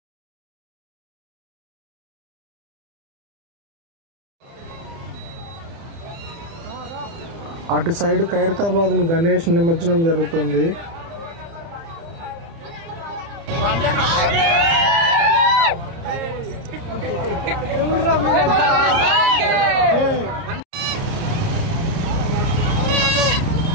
అటు సైడ్ ఖైరతాబాద్ గణేష్ నిమజ్జనం జరుగుతుంది.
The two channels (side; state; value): left; late; 30 ms